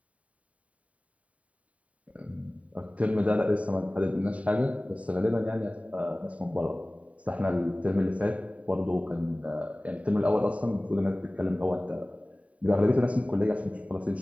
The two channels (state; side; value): late; left; 0.067 ms